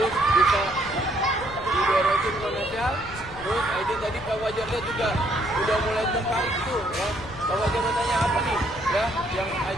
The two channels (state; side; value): noise; left; rumble, 16 dB below the sound